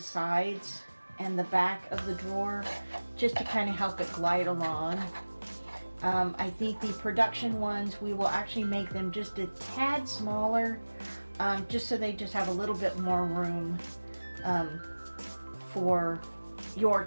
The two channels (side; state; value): both; inverted; correlation -1.00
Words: and the back of the drawer just to kind of help it glide along. I think the production ones, we will actually make them just a tad smaller, just so they just have a little bit more room for your